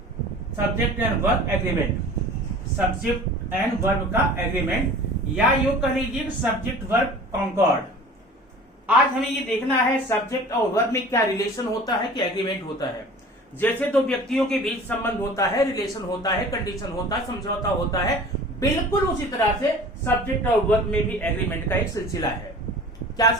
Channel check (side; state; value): both; normal; correlation 0.42